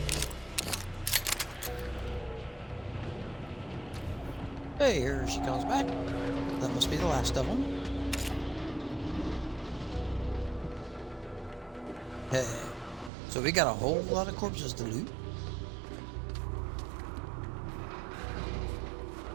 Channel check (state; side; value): drops out; left; at 13.1 s